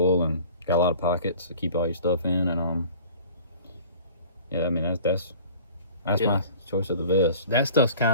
and got a lot of pockets to keep all your stuff in, and yeah, I mean that's Yeah. my choice of the vest. That stuff's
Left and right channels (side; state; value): both; inverted; correlation -0.46